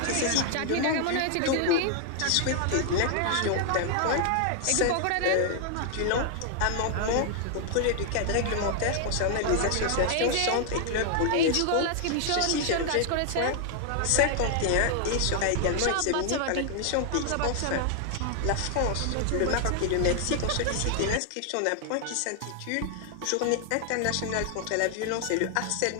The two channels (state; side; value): different; both; correlation 0.00